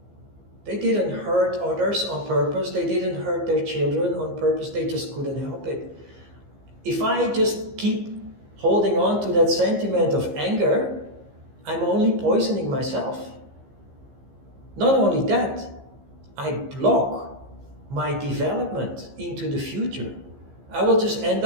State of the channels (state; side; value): late; left; 15 ms